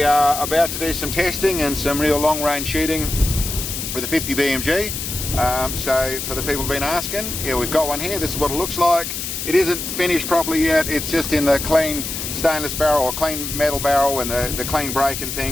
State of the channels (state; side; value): noise; left; hiss, 5 dB below the sound